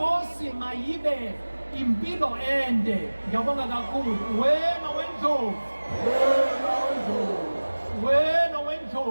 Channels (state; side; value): inverted; both; correlation -1.00